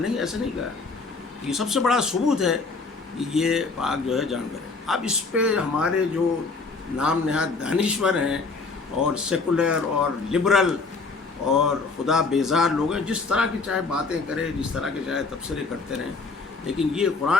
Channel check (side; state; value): right; quieter; 4.1 dB